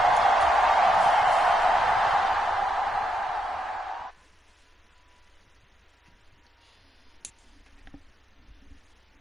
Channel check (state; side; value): normal; both; correlation 0.81